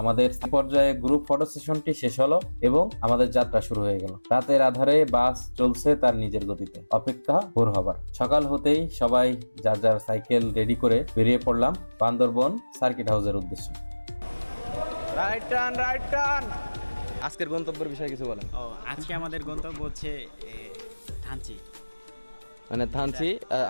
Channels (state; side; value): inverted; both; correlation -1.00